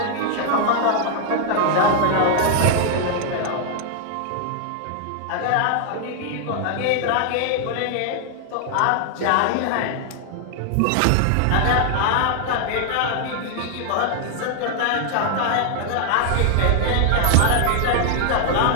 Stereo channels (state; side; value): different; both; correlation 0.00